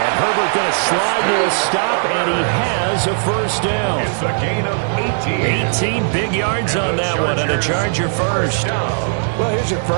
Herbert going to slide to a stop, and he has a 1st down. It's a gain of 18. 18 big yards on that one, and a Charger 1st. Well, here's your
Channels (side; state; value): left; silent; digital silence